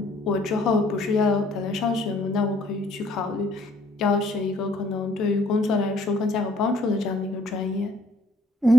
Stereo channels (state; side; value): normal; both; correlation 0.61